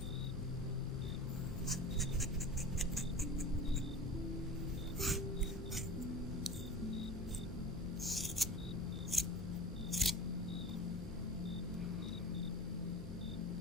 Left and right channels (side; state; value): left; noise; hum, 10 dB below the sound